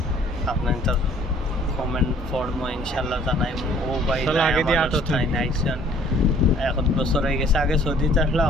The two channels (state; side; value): normal; both; correlation 0.57